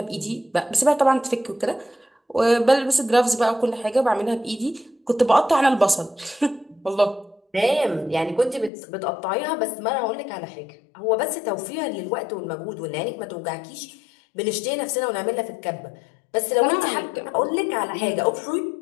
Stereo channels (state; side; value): drops out; right; at 8.7 s